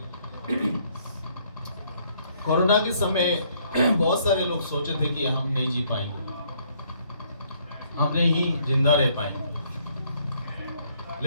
कोरोना के समय बहुत सारे लोग सोचे थे कि हम नहीं जी पाएंगे, हम नहीं जिंदा रह पाएंगे,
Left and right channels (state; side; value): inverted; both; correlation -0.67